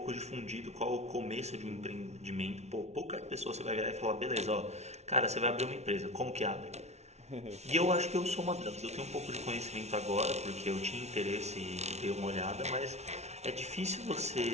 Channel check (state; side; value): late; left; 0.32 ms